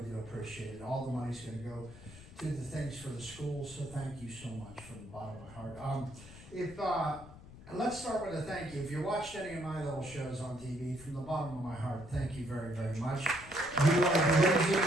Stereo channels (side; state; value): left; noise; rumble, 17 dB below the sound